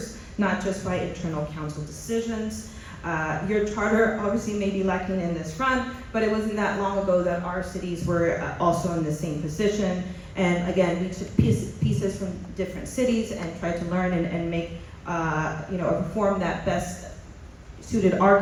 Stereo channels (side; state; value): both; identical; correlation 1.00